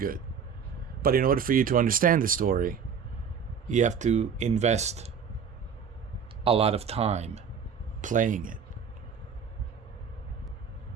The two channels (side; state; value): left; quieter; 6.8 dB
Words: but in order for you to understand the story, you have to invest a lot of time playing it.